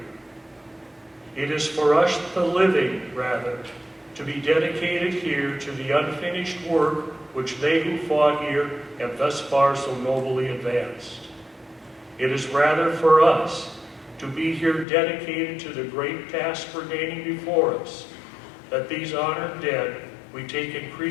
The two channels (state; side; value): drops out; right; at 14.9 s